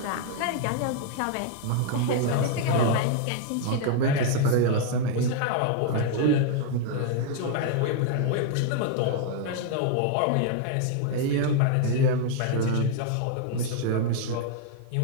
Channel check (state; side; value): different; both; correlation -0.01